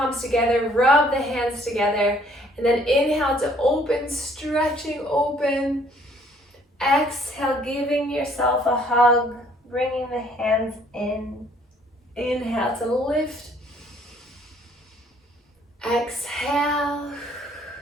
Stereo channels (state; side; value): normal; both; correlation 0.61